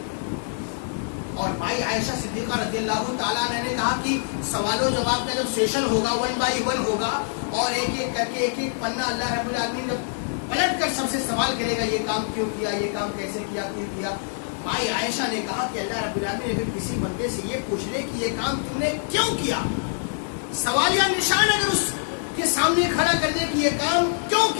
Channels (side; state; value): right; silent; digital silence